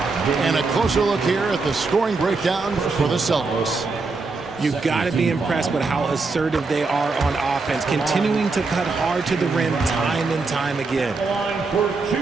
And a closer look here at the scoring breakdown for the Celtics. You've got to be impressed with how assertive they are on offense, continuing to cut hard to the rim time and time again.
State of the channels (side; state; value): left; quieter; 4.0 dB